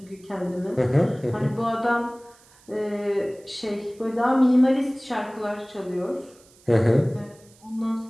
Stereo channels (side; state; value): right; noise; hiss, 28 dB below the sound